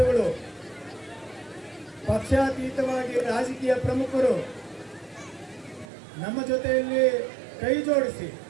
ಪಕ್ಷಾತೀತವಾಗಿ ರಾಜಕೀಯ ಪ್ರಮುಖರು ನಮ್ಮ ಜೊತೆಯಲ್ಲಿ ಕೈ ಜೋಡಿಸಿ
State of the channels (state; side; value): drops out; left; at 5.9 s